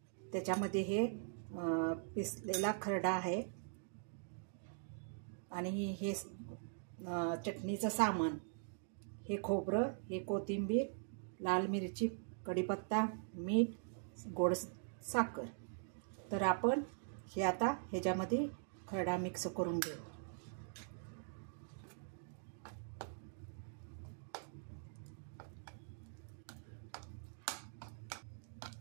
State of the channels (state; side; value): silent; left; digital silence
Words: त्याच्यामध्ये हे पिसलेला खरडा आहे आणि हे चटणीचं सामान, हे खोबरं, हे कोथिंबीर, लाल मिरची, कढीपत्ता, मीठ, गोड साखर। तर आपण हे आता ह्याच्यामध्ये खरडा मिक्स करून घेऊ।